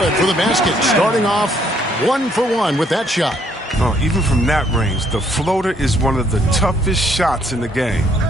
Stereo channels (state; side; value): normal; both; correlation 0.67